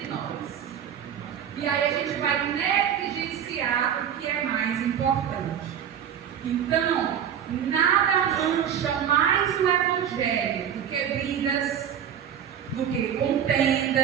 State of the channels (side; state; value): left; quieter; 8.9 dB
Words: nós. E aí a gente vai negligenciar o que é mais importante. Então, nada mancha mais o Evangelho do que brigas, do que